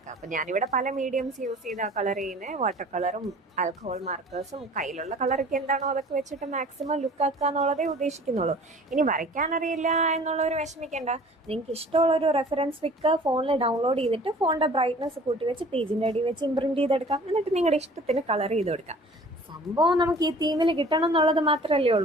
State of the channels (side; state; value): both; normal; correlation 0.48